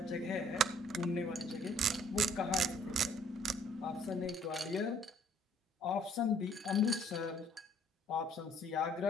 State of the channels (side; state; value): both; normal; correlation 0.59